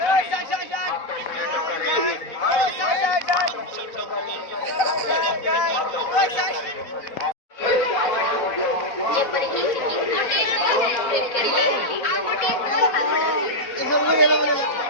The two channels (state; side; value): late; right; 4.1 ms